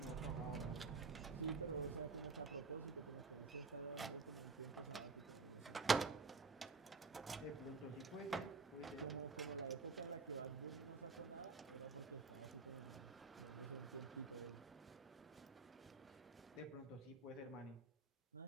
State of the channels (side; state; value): left; quieter; 4.2 dB